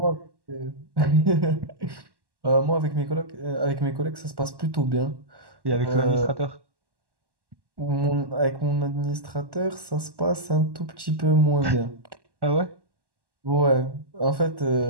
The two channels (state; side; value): late; left; 1.1 ms